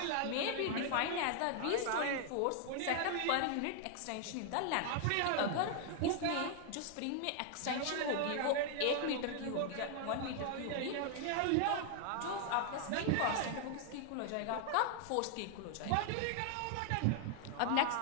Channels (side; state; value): both; different; correlation 0.00